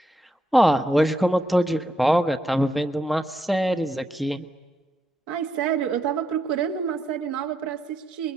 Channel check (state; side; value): normal; both; correlation 0.80